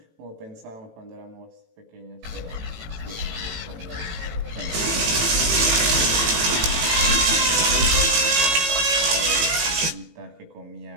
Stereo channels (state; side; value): late; left; 18 ms